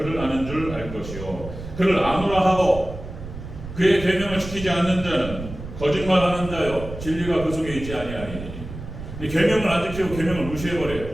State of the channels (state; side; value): noise; right; rumble, 10 dB below the sound